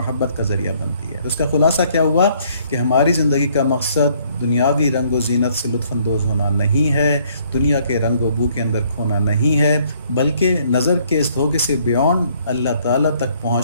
کا ذریعہ بنتی ہے۔ تو اس کا خلاصہ کیا ہوا کہ ہماری زندگی کا مقصد دنیاوی رنگ و زینت سے لطف اندوز ہونا نہیں ہے، دنیا کے رنگ و بو کے اندر کھونا نہیں ہے، بلکہ نظر کے اس دھوکے سے بیونڈ اللہ تعالیٰ تک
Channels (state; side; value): inverted; both; correlation -0.65